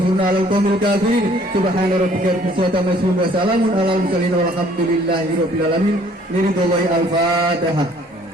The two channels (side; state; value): both; normal; correlation 0.58